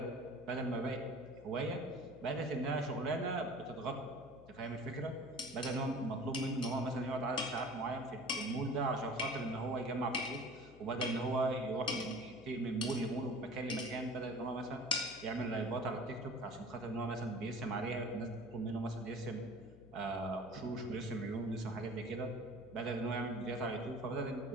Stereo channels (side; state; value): left; noise; hum, 21 dB below the sound